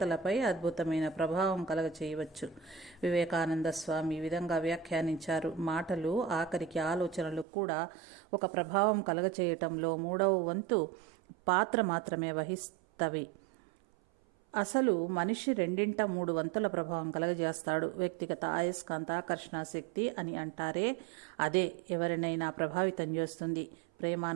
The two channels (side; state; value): left; drops out; at 7.5 s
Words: అద్భుతమైన ప్రభావం కలగచేయవచ్చు. వివేకానంద స్వామి ఈ విధంగా వ్యాఖ్యానించారు. మాటలు, ఆఖరికి ఆలోచనలు కూడా ఒక ప్రభావం కలగచేయటంలో 3వ వంతు పాత్ర మాత్రమే వహిస్తవి. అసలు మనిషి 2/3 వంతుల ప్రభావం కలగజేస్తాడు. వ్యక్తిగత అయస్కాంత ఆకర్షణ శక్తి అని అంటారే, అదే ఎవరినైనా ప్రభావితం చేస్తుంది.